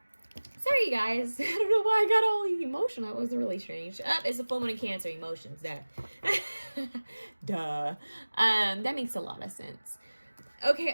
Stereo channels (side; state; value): both; inverted; correlation -1.00